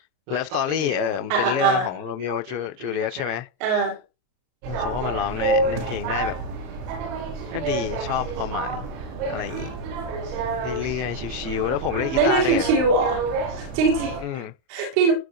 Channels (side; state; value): left; late; 32 ms